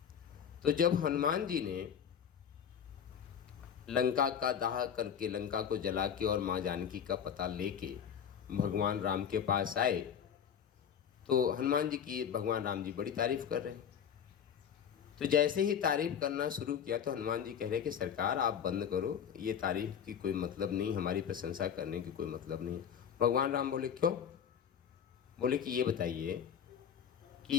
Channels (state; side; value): quieter; right; 8.1 dB